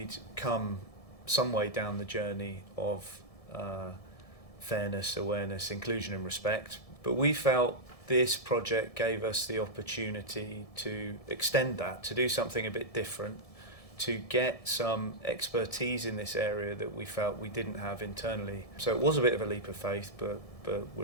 come some way down the journey of fairness, awareness, inclusion and respect, but we felt this project gave us the opportunity to extend that, to do something a bit different, to get some expertise in this area that we felt we didn't have internally. So it was a bit of a leap of faith, but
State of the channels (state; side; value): late; right; 1.7 ms